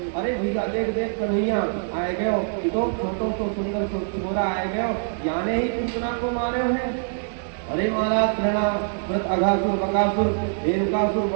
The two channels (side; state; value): left; silent; digital silence